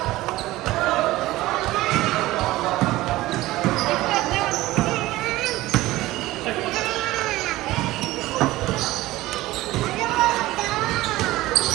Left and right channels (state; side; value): quieter; left; 17.6 dB